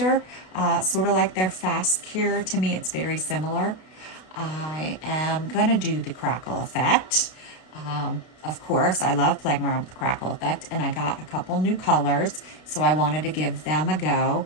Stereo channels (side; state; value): right; late; 32 ms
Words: sort of like their fast cure. To me, it's very similar. I am going to do the crackle effect. Of course, I love playing around with the crackle effect, and I got a couple new colors, so I wanted to give them a go.